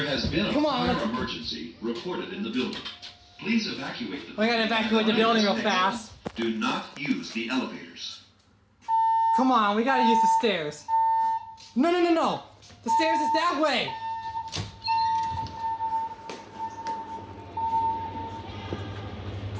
has been a Come on, fire let's- emergency reported in the building. Please evacuate the We gotta evacuate the building real fast. Do not use the elevators. Come on, we gotta use the stairs. No. The stairs is that way.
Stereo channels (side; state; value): both; identical; correlation 1.00